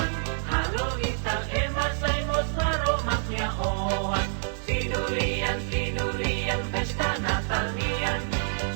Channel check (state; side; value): silent; left; digital silence